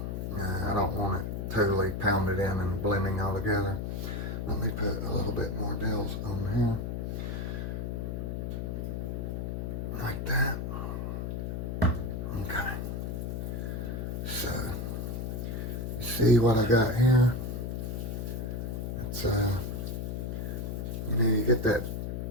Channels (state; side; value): noise; left; hum, 3 dB below the sound